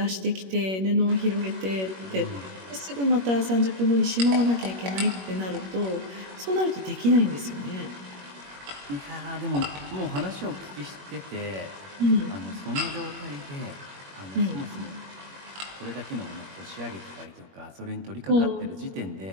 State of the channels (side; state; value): left; late; 21 ms